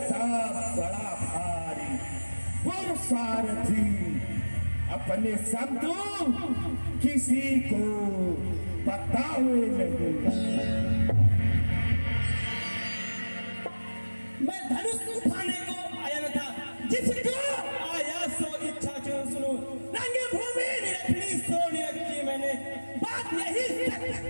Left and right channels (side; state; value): both; inverted; correlation -1.00